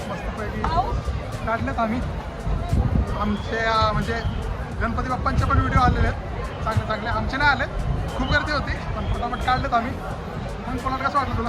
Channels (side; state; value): both; identical; correlation 1.00